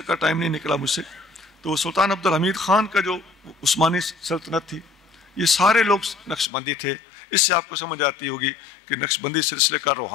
ٹائم نہیں نکلا مجھ سے۔ تو سلطان عبد الحمید خان کا جو عثمانی سلطنت تھی، یہ سارے لوگ نقشبندی تھے۔ اس سے آپ کو سمجھ آتی ہوگی کہ نقشبندی سلسلے کا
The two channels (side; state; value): right; drops out; at 6.5 s